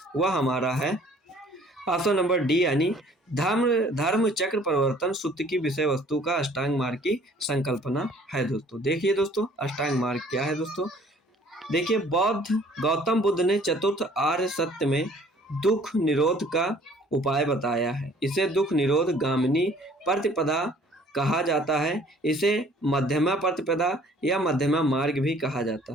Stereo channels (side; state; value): both; normal; correlation 0.55